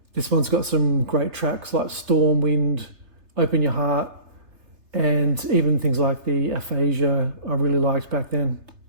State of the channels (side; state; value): left; late; 3.3 ms